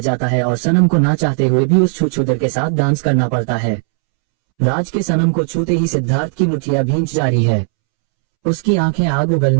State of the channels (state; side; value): silent; left; 69 dB below the other